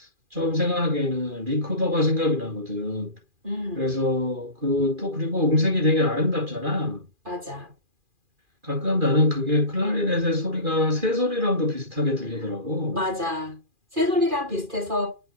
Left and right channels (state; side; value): late; left; 2.4 ms